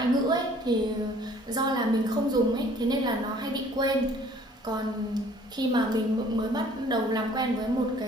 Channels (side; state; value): both; normal; correlation 0.55